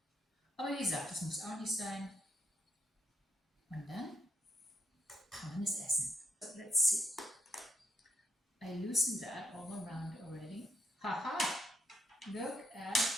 Aber wie gesagt, das muss auch nicht sein. Und dann kann man es essen. So, let's see. I loosened that all around already. Haha! Look at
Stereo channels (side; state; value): both; normal; correlation 0.79